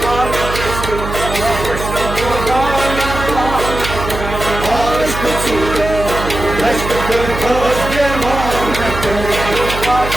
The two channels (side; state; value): right; noise; hum, 7 dB below the sound